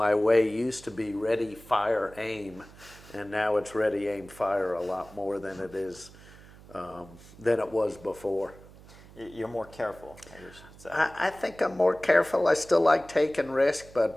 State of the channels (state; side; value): noise; right; hum, 21 dB below the sound